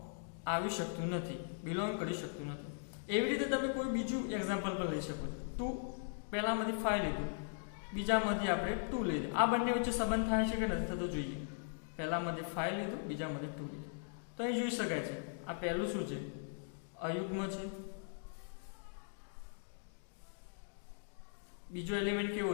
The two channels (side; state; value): right; silent; digital silence